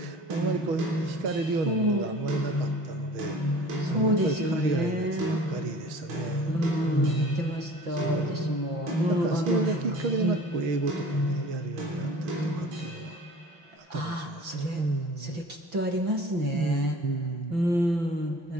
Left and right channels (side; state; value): left; late; 5.9 ms